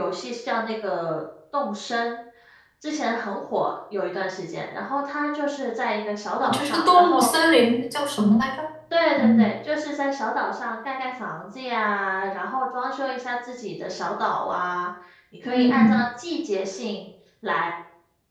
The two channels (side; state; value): both; identical; correlation 1.00